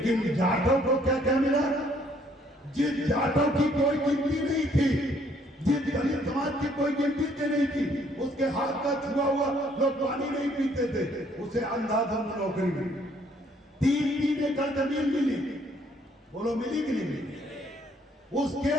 जाटों को क्या क्या मिला? जिस जाटों की कोई गिनती नहीं थी, जिस दलित समाज की कोई गिनती नहीं थी, उसके हाथ का छुआ हुआ लोग पानी नहीं पीते थे, उसे अंधाधुंध नौकरी मिली, 3 एकड़ जमीन मिली। बोलो मिली कि नहीं मिली? उसके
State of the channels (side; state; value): both; normal; correlation 0.64